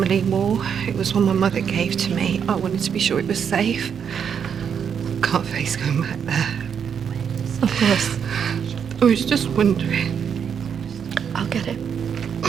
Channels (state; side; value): quieter; left; 7.5 dB